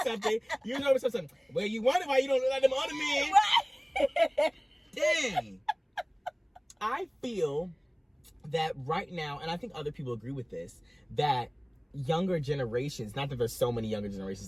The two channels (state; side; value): identical; both; correlation 1.00